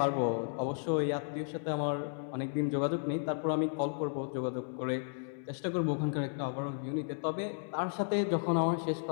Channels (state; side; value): silent; right; digital silence